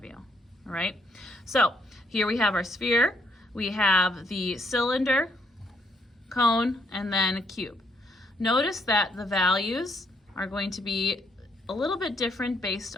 you. All right, so here we have our sphere, we have the cylinder, cone, and then a cube. Notice that the values are going to be a little bit different based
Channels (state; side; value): normal; both; correlation 0.71